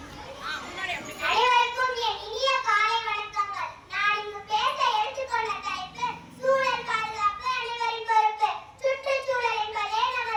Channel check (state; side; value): identical; both; correlation 1.00